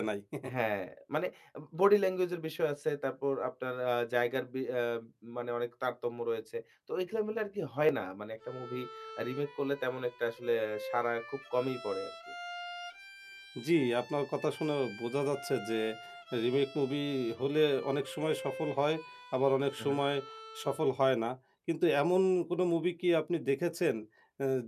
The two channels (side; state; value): both; identical; correlation 1.00